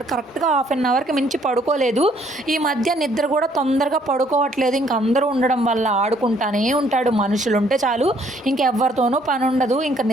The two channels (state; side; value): normal; both; correlation 0.64